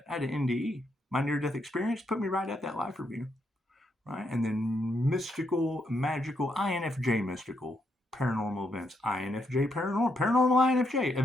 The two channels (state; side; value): normal; both; correlation 0.78